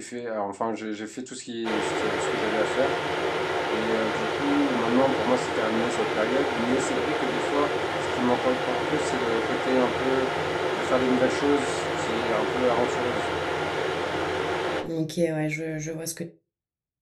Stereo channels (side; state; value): both; identical; correlation 1.00